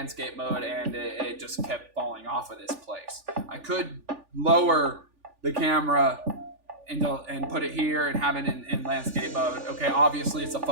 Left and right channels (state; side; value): late; left; 3.4 ms